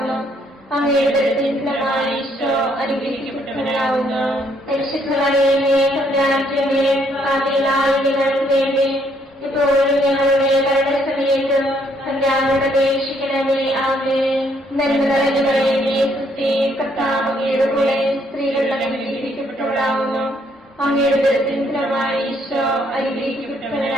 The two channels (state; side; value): normal; both; correlation 0.69